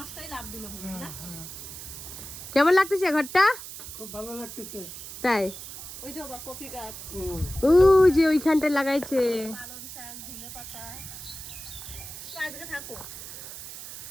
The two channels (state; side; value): noise; right; hiss, 11 dB below the sound